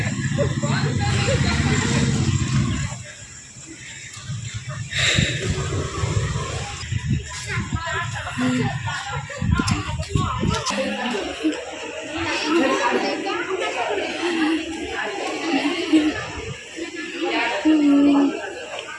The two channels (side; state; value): both; identical; correlation 1.00